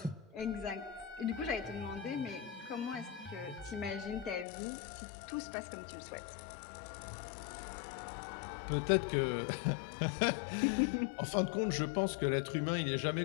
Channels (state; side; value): drops out; right; at 4.5 s